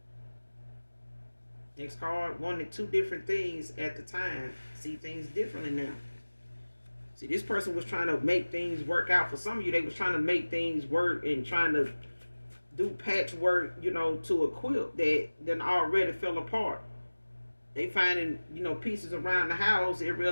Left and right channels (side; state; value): both; inverted; correlation -1.00